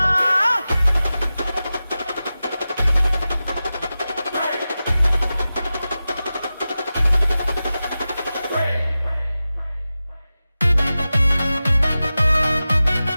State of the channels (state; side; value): inverted; both; correlation -0.94